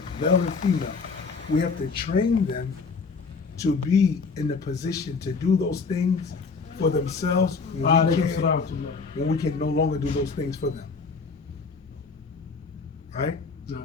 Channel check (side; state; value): right; quieter; 4.7 dB